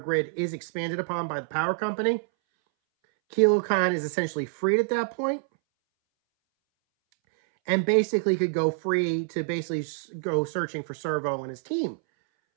is expanded upon by the power company. Kilo Khan is essentially freed at that point, and basically could go free to basically go searching for Servo and his team.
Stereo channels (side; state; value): left; silent; 60 dB below the other